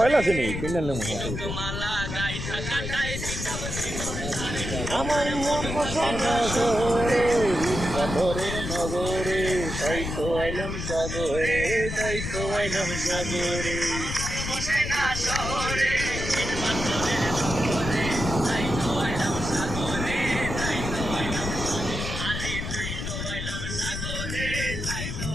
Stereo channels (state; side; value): noise; left; rumble, 5 dB below the sound